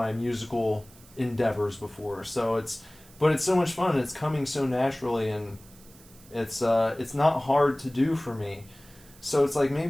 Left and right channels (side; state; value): right; noise; hiss, 24 dB below the sound